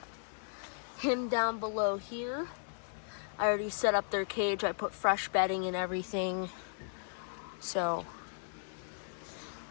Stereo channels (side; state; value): right; silent; digital silence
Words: him down below here. I already set up their cage. I put fresh bedding and everything. So